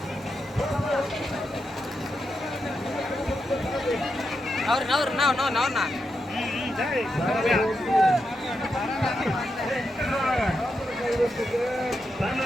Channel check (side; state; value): both; normal; correlation 0.85